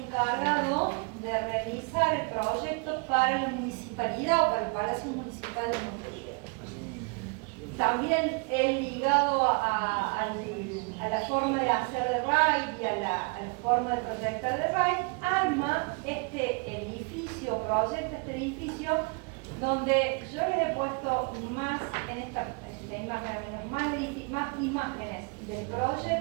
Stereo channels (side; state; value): left; quieter; 34.1 dB